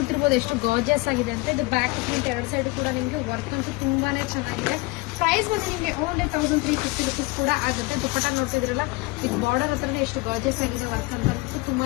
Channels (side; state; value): right; quieter; 24.2 dB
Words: ಎಷ್ಟು ಗಾರ್ಜಿಯಸ್ ಆಗಿದೆ ಅಂತ. ಇದು ಬ್ಯಾಕ್ ಪ್ರಿಂಟ್ ಎರಡು ಸೈಡ್ ಕೂಡ ನಿಮ್ಗೆ ವರ್ಕ್ ಅಂತೂ ತುಂಬಾನೇ ಚೆನ್ನಾಗಿದೆ. ಪ್ರೈಸ್ ಬಂದು ನಿಮ್ಗೆ ಓನ್ಲಿ 1350 rupees ಕೂಡ ಆಗುತ್ತೆ. ದುಪಟ್ಟ ನೋಡ್ತಿದ್ರಲ್ಲ, ಇದು ಬಾರ್ಡರ್ ಹತ್ರನೇ ಎಷ್ಟು ಗಾರ್ಜಿಯಸ್ ಆಗಿದೆ ವರ್ಕ್ ಅಂತ.